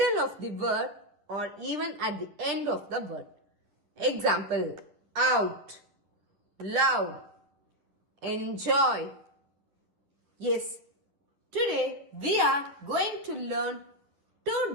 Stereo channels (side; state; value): left; late; 10 ms